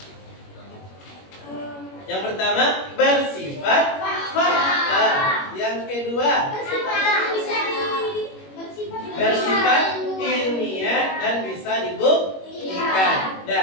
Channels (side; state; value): right; late; 21 ms